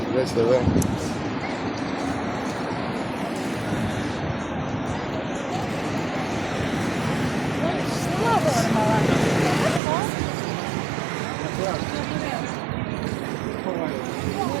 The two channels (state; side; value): drops out; left; at 9.8 s